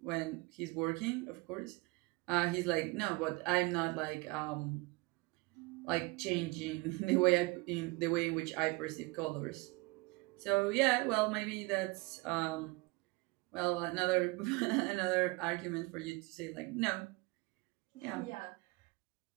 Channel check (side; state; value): left; quieter; 25.0 dB